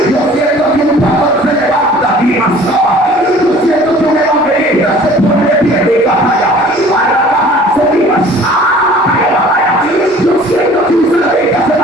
Yo siento que un pastor se levanta aquí, yo siento que un evangelista se pone de pie de caja, para bajarse viva. Yo siento que un salvador se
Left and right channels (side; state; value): both; normal; correlation 0.49